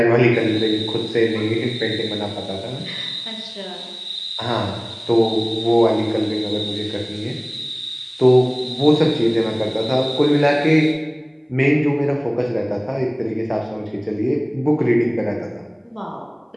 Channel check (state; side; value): identical; both; correlation 1.00